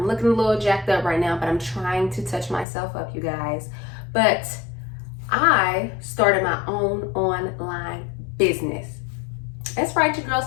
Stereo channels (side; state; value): right; drops out; at 2.7 s